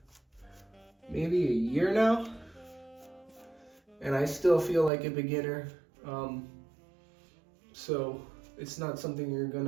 maybe a year now, and I still feel like a beginner. So it's not something you're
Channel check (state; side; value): drops out; left; at 4.9 s